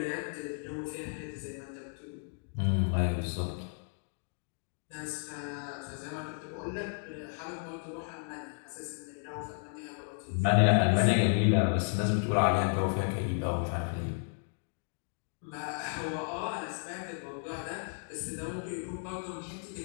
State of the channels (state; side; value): silent; right; 55 dB below the other